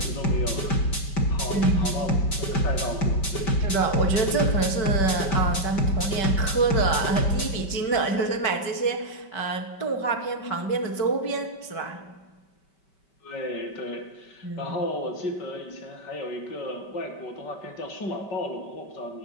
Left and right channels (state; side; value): late; right; 5.2 ms